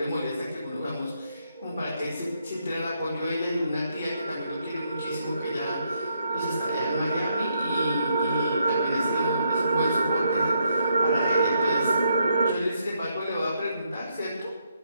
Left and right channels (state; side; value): inverted; both; correlation -0.76